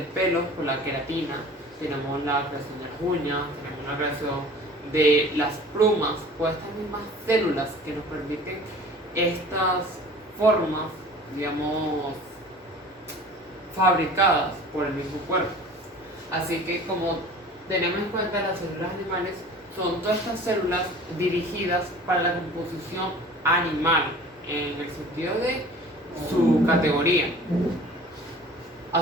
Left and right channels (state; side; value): normal; both; correlation 0.44